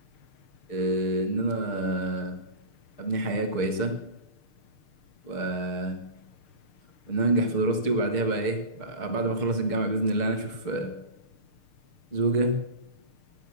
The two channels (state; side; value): late; right; 6.6 ms